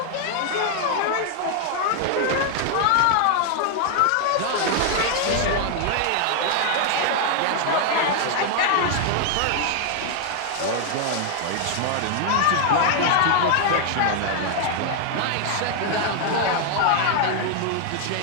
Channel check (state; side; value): different; both; correlation 0.00